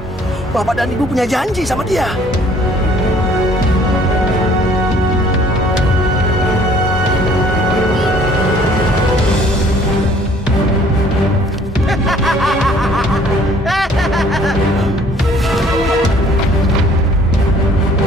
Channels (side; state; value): both; normal; correlation 0.57